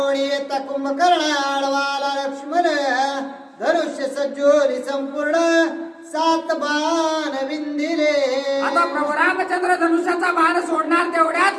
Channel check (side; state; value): both; identical; correlation 1.00